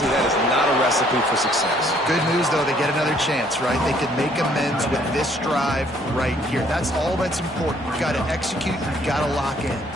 that is not a recipe for success. Good news, though, they get another chance, right? They can make amends with this drive right here. That's all that's important. You've got to execute. You've got to lock in.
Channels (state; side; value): normal; both; correlation 0.63